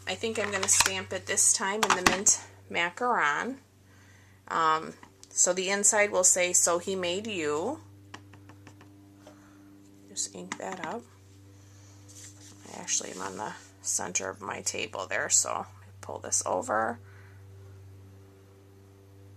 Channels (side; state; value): both; identical; correlation 1.00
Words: I think I'm going to stamp it this time in the mint macaron. So the inside will say, "So he made you." Just ink that up. I actually am on the center of my table there, so pull this over.